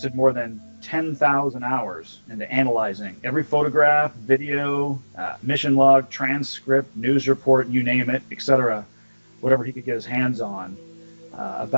more than 10,000 hours into analyzing every photograph, video, mission log, transcript, news report, you name it, etc., whatever he could get his hands on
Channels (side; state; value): both; inverted; correlation -1.00